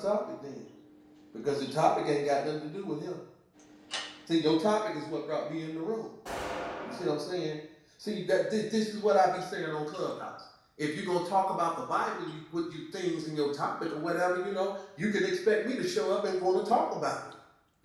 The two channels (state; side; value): identical; both; correlation 1.00